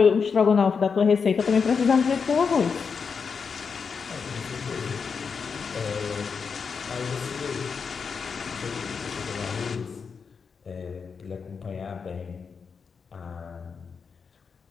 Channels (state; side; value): quieter; right; 5.7 dB